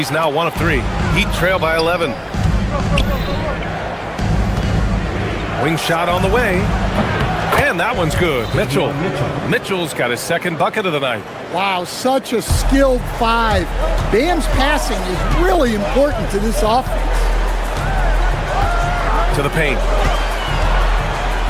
now 1 of 3. Heat trail by 11. Wing shot on the way. And that one's good. Mitchell's got his second bucket of the night. Wow, such a skilled 5. Bam's passing is really important to this offense. To the paint.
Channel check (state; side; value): identical; both; correlation 1.00